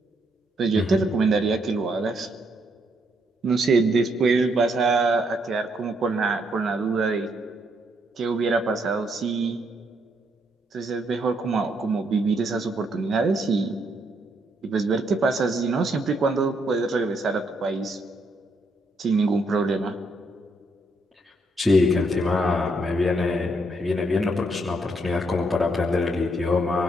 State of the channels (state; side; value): normal; both; correlation 0.74